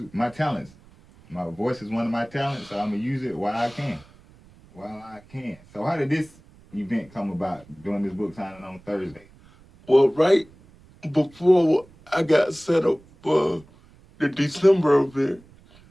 my talents. My voice is one of my talents, so I'm going to use it while I can. So how did this event come about, doing this book signing on Thursday? Well, right before I got set up for the December event,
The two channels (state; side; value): noise; right; rumble, 26 dB below the sound